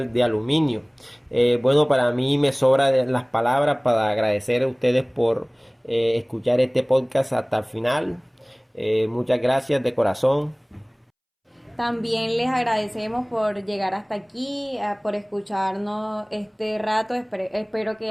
de aluminio. Bueno, para mí me sobran las palabras para agradecer a ustedes por escuchar este podcast hasta el final. Muchas gracias de corazón. También les agradecemos por llegar hasta aquí, por escucharnos este rato. Espero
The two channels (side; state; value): both; identical; correlation 1.00